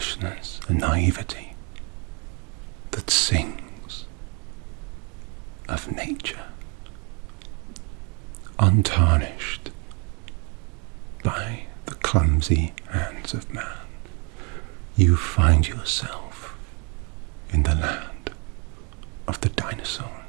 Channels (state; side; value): quieter; left; 34.0 dB